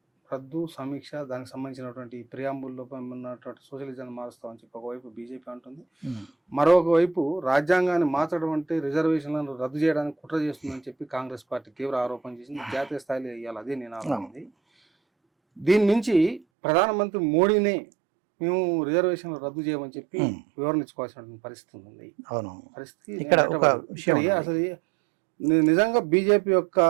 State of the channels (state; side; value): drops out; left; at 16.4 s